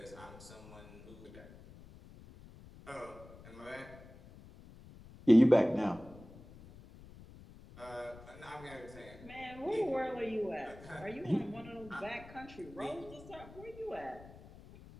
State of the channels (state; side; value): noise; left; rumble, 18 dB below the sound